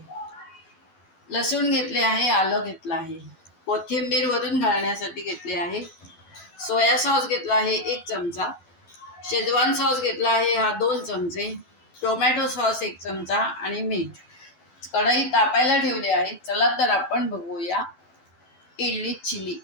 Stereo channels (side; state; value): right; late; 12 ms